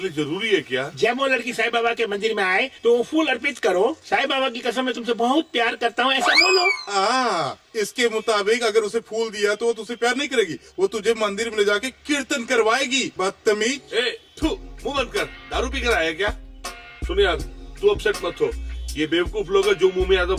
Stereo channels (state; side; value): identical; both; correlation 1.00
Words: लिए जरूरी है क्या? जब वो लड़की साईं बाबा के मंदिर में आए तो फूल अर्पित करो, साईं बाबा की कसम मैं तुमसे बहुत प्यार करता हूँ, ऐसा बोलो। इसके मुताबिक अगर उसे फूल दिया तो वो तुझसे प्यार नहीं करेगी, वो तुझे मंदिर में ले जाके कीर्तन करवाएगी। बदतमीज। मुंह बंद कर, दारू पी कर आया क्या? सुन यार, तू अपसेट मत हो, ये बेवकूफ लोग जो मुंह में आता